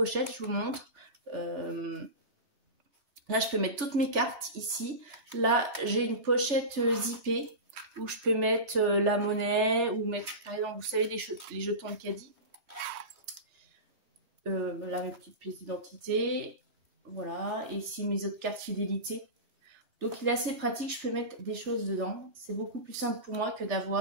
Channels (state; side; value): late; left; 3.4 ms